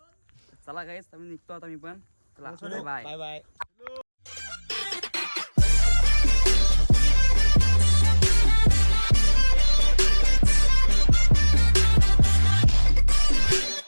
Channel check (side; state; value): both; inverted; correlation -1.00